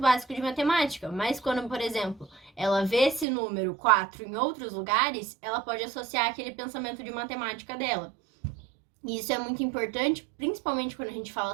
básico de matemática, mas quando, por exemplo, ela vê esse número 4 em outros lugares, ela pode associar aquele pensamento de matemática dela. E isso é muito importante, principalmente quando a gente fala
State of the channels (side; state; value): left; drops out; at 3.2 s